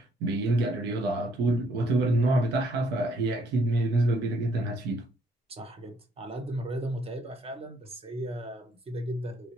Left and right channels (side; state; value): both; normal; correlation 0.68